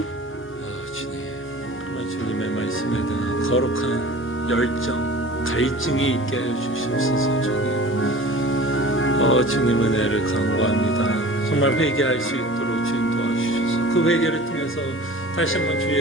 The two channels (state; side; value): normal; both; correlation 0.41